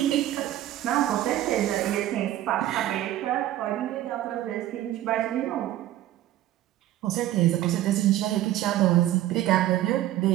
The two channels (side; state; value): left; quieter; 13.7 dB